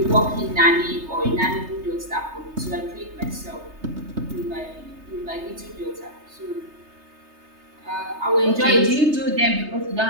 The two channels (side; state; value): left; late; 3.3 ms